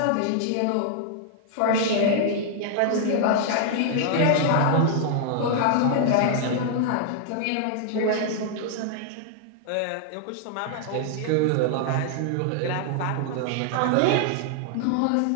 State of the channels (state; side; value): different; both; correlation -0.01